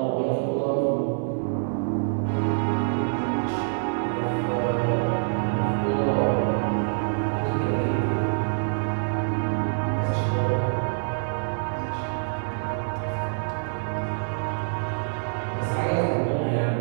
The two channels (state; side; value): silent; left; digital silence